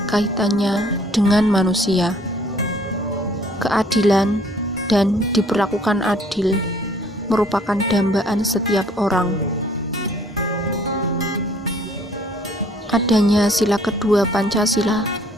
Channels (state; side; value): normal; both; correlation 0.59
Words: kaitannya dengan manusia. Keadilan dan diperlakukan adil merupakan dambaan setiap orang. Adanya sila kedua Pancasila,